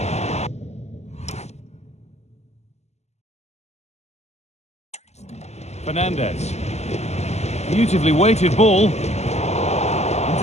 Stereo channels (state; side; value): late; right; 0.32 ms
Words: Fernandez. Beautifully weighted ball.